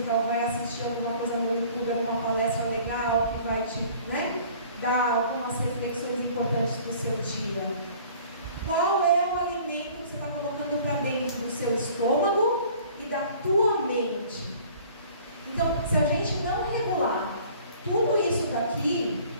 ou vai assistir alguma coisa no YouTube, alguma palestra legal que vai te dar algumas reflexões importantes para o seu dia? Qual é o alimento que você está colocando para dentro do seu estômago e da tua mente? Então, se a gente não regular tudo isso daqui,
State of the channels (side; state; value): both; inverted; correlation -0.51